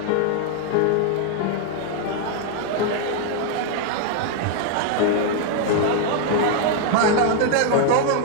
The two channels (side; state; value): both; different; correlation 0.00